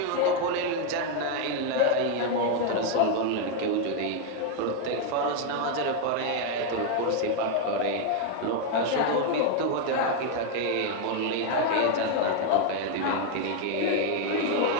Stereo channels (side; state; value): both; different; correlation 0.01